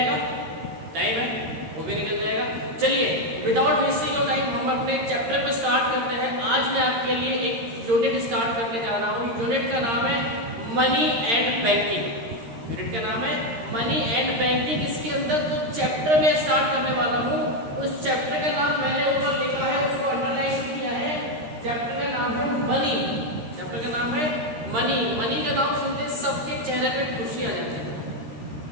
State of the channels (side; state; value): left; late; 13 ms